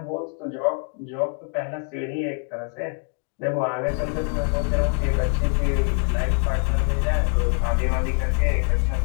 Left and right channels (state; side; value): quieter; right; 38.5 dB